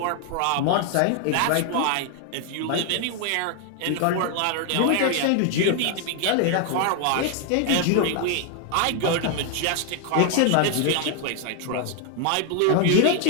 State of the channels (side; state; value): both; different; correlation 0.00